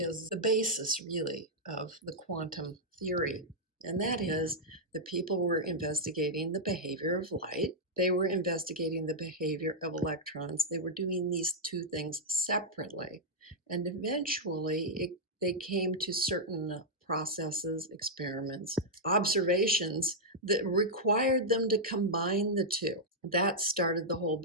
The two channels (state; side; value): normal; both; correlation -0.06